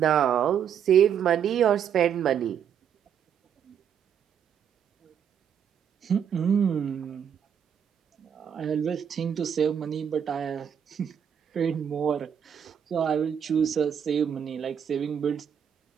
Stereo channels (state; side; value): quieter; left; 8.3 dB